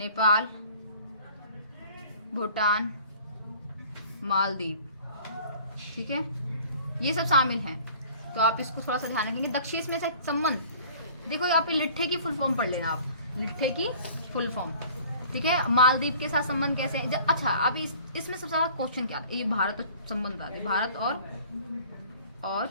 भूटान, मालदीव। ठीक है, ये सब शामिल हैं, तो आप इसको थोड़ा सा ध्यान रखेंगे। दक्षेश में से संबंध देखो, यहाँ पे लिट्ठे की फुल फॉर्म पढ़ लेना आप, लिट्ठे की फुल फॉर्म। ठीक है, मालदीव के साथ संबंध कैसे है। अच्छा अब इसमें सबसे ज्यादा क्वेश्चन क्या, ये भारत संबंध आ, भारत और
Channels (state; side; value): inverted; both; correlation -0.49